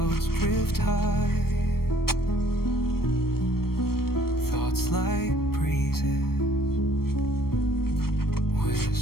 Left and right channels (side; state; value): right; late; 0.94 ms